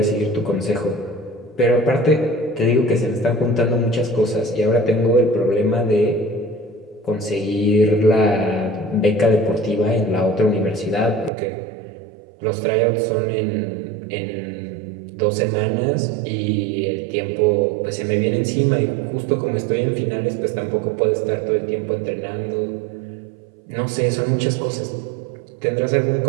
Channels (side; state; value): left; drops out; at 11.3 s